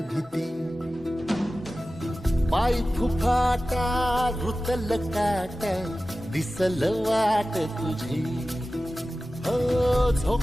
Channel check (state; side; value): normal; both; correlation 0.95